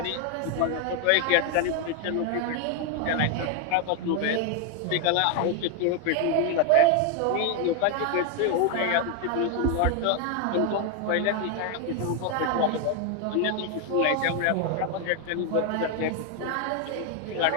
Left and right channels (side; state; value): both; different; correlation 0.01